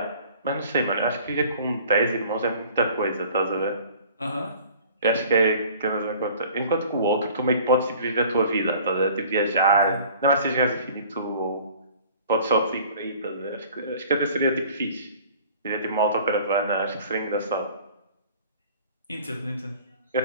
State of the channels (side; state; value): both; inverted; correlation -0.49